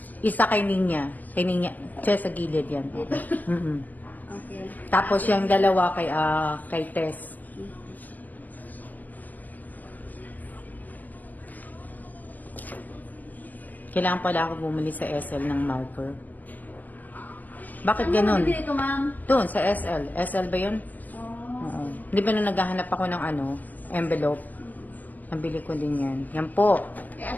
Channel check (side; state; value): right; late; 0.083 ms